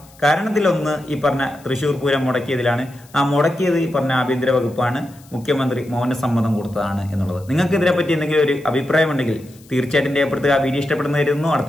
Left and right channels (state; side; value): noise; left; hiss, 26 dB below the sound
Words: കാരണത്തിലൊന്ന് ഈ പറഞ്ഞ തൃശ്ശൂർ പൂരം മുടക്കിയതിലാണ്. ആ മുടക്കിയത് ഈ പറഞ്ഞ ആഭ്യന്തര വകുപ്പാണ്. മുഖ്യമന്ത്രി മൗനസമ്മതം കൊടുത്തതാണ് എന്നുള്ളത്. നിങ്ങൾക്ക് ഇതിനെപ്പറ്റി എന്തെങ്കിലും ഒരു അഭിപ്രായം ഉണ്ടെങ്കിൽ തീർച്ചയായിട്ടും രേഖപ്പെടുത്തുക. വീഡിയോ ഇഷ്ടപ്പെടുന്നതായിരുന്നു.